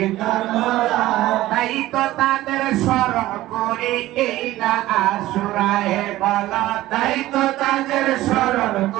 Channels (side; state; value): left; quieter; 16.1 dB